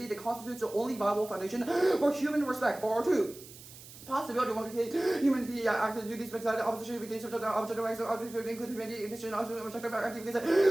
that constitutes the only viable foundation for human respect. 4. Possibility one humanity active duties makes opposition between subject and object rights object include humanity intention also objective active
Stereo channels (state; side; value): noise; right; hiss, 17 dB below the sound